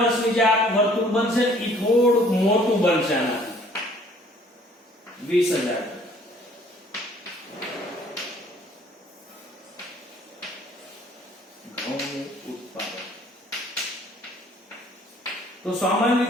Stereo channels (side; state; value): both; normal; correlation 0.57